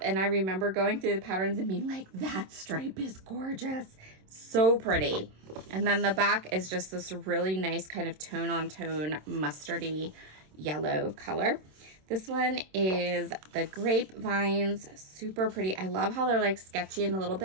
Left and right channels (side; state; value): left; late; 27 ms